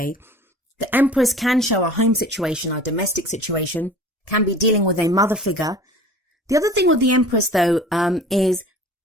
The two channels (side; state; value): both; normal; correlation 0.43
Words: The Empress can show a home situation, a domestic situation, can be dealing with a mother figure. The other thing with the Empress, though, is